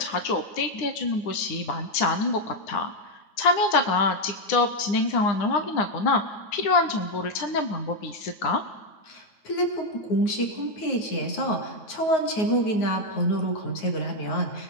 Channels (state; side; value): late; right; 9.4 ms